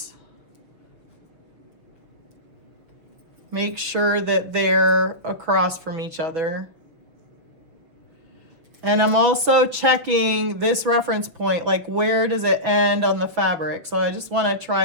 make sure that they're across from each other. And I'm also checking this reference point, like where does it end on the fabric? So I just want to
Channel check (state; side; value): late; left; 6.3 ms